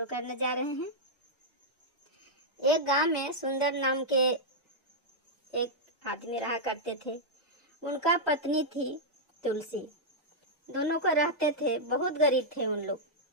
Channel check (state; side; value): normal; both; correlation -0.06